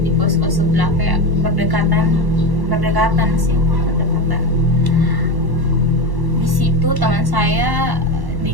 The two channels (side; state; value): left; late; 1.1 ms